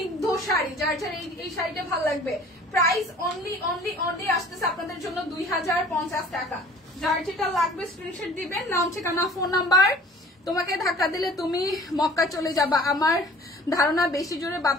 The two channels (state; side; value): normal; both; correlation 0.49